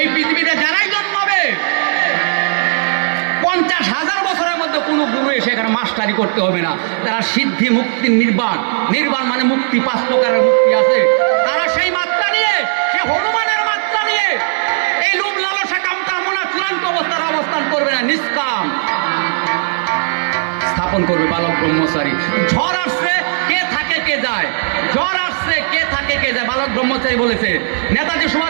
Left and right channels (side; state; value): left; silent; digital silence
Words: পৃথিবীতে যারাই জন্মাবে 50,000 বছরের মধ্যে কোনো গুরু এসে এখানে মাস্টারি করতে হবে না। তারা সিদ্ধি, মুক্তি, নির্বাণ, নির্বাণ মানে মুক্তি, 5 প্রকারের মুক্তি আছে। তারা সেই মাত্রা নিয়ে, সে হনুমানের মাত্রা নিয়ে এই লোভ লালসা কাম কামনা চূড়ান্ত অবস্থার অবস্থান করবে না, নিষ্কাম স্থাপন করবে বালক ব্রহ্মচারী। ঝড় আসছে, কে থাকে কে যায়, ঝড় আসছে, কে থাকে কে যায়, বালক ব্রহ্মচারী বলেছে। নেতাজি